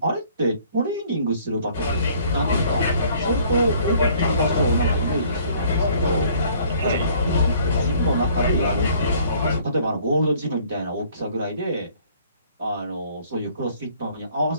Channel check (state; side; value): inverted; both; correlation -0.58